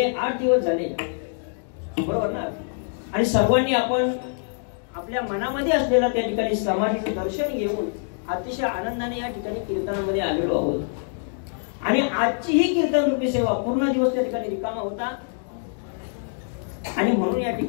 8 दिवस झाले बरोबर ना, आणि सर्वांनी आपण आपल्या मनामध्ये असलेला त्या ठिकाणी समाधीचं दर्शन घेऊन अतिशय आनंदाने या ठिकाणी कीर्तनामध्ये आलेलो आहोत। आणि आजची ही कीर्तन रूपी सेवा पूर्ण दिवस त्या ठिकाणी रिकामा होता। आणि म्हणून या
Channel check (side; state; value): right; silent; digital silence